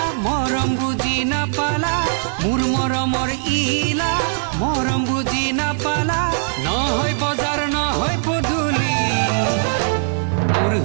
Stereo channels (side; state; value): left; silent; 66 dB below the other